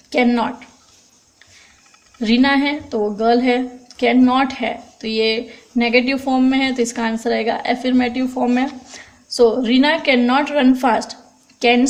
Can not, Reena है तो वो गर्ल है, कैन नॉट है तो ये नेगेटिव फॉर्म में है, तो इसका आंसर आएगा अफर्मेटिव फॉर्म में. So Reena can not run fast. Can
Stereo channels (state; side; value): identical; both; correlation 1.00